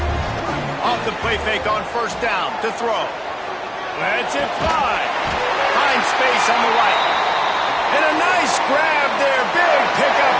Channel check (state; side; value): identical; both; correlation 1.00